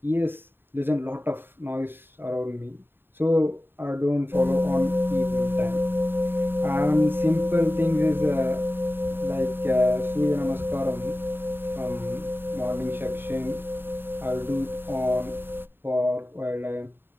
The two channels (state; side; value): late; left; 0.10 ms